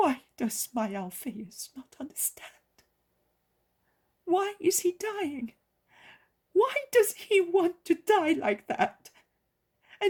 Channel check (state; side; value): identical; both; correlation 1.00